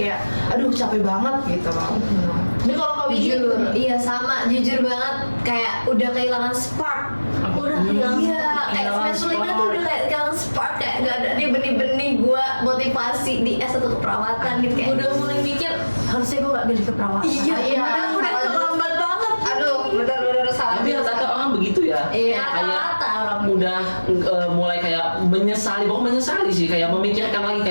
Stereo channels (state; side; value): inverted; both; correlation -1.00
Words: aduh capek banget gitu loh. Ini kalau kau Jujur, iya sama, jujur banget kayak udah kehilangan spark. Udah kehilangan Iya, kayak kehilangan semester 5 tuh spark. udah kayak kehilangan spark, kayak gak ada nih benih-benih gua motivasi di S1 keperawatan gitu kayak. Udah mulai mikir harusnya gue gak pilih keperawatan. Iya, Iya, padahal udah salah terlambat banget. aduh bener-bener salah. Tapi rata-rata orang begitu ya. Iya. Rata-rata orang Udah mulai kayak menyesali, bukan menyesali sih, kayak memikirkan lagi